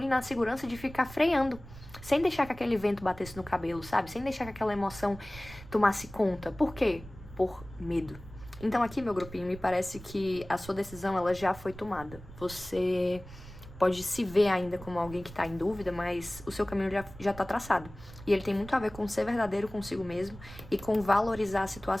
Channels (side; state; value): right; noise; rumble, 16 dB below the sound